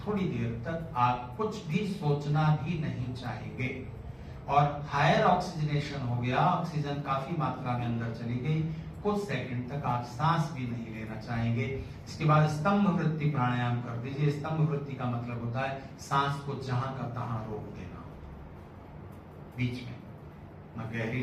देर तक आप कुछ भी सोचना भी नहीं चाहेंगे और हायर ऑक्सीजनेशन हो गया, ऑक्सीजन काफी मात्रा में अंदर चली गई, कुछ सेकंड तक आप सांस भी नहीं लेना चाहेंगे। इसके बाद स्तंभ वृत्ति प्राणायाम कर दीजिए। स्तंभ वृत्ति का मतलब होता है सांस को जहां का तहां रोक देना, बीच में न गहरी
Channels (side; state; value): both; identical; correlation 1.00